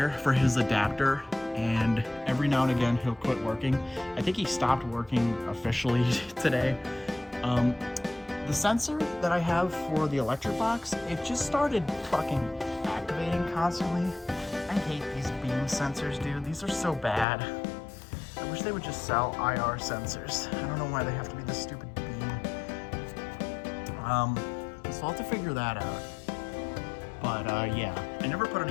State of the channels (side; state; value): right; drops out; at 17.2 s